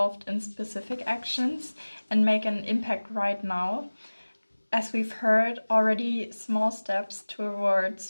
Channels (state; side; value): inverted; both; correlation -1.00